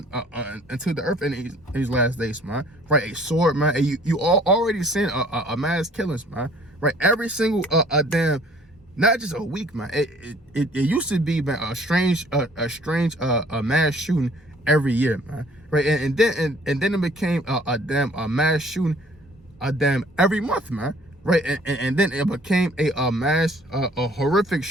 into the earth in these last days, man. Right, a sword, man. And you all already seen a mass killings, man. Right, every single damn, not just a week, man. It used to be, man, a strange mass shooting every year, man. Right, and then it became a mass shooting every month, man. Right, and then it became a mass a horrific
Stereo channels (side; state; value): both; normal; correlation 0.55